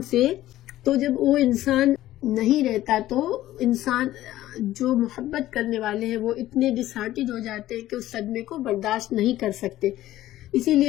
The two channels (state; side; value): quieter; right; 14.6 dB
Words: سے، تو جب وہ انسان نہیں رہتا تو انسان جو محبت کرنے والے ہیں وہ اتنے ڈس ہارٹڈ ہو جاتے ہیں کہ اس صدمے کو برداشت نہیں کر سکتے۔ اسی